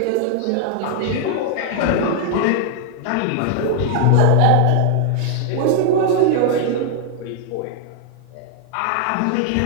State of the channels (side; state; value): both; different; correlation 0.00